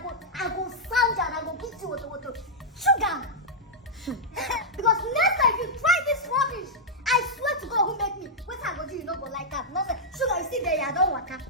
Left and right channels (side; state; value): both; normal; correlation -0.05